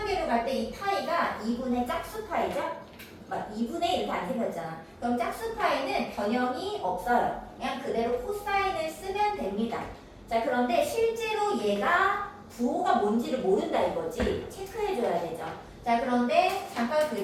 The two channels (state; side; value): identical; both; correlation 1.00